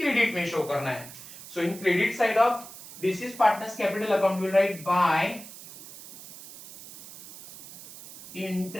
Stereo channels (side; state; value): right; noise; hiss, 16 dB below the sound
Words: क्रेडिट में शो करना है. So in credit side of deceased partner's capital account, we'll write by